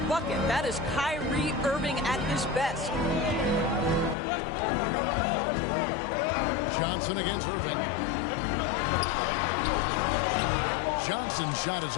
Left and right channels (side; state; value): right; drops out; at 4.2 s